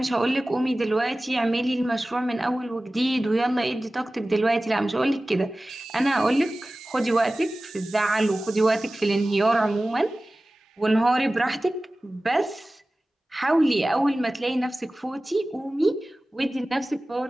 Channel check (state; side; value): normal; both; correlation 0.97